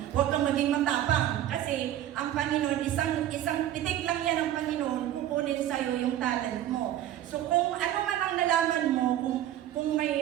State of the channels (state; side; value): quieter; left; 12.3 dB